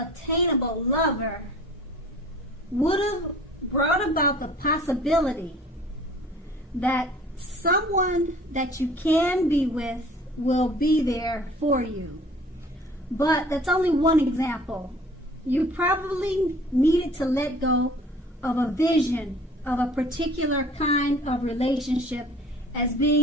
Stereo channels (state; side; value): normal; both; correlation 0.49